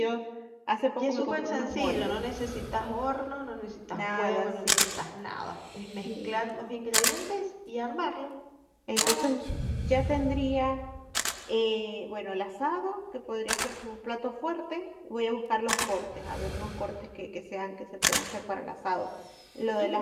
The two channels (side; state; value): both; identical; correlation 1.00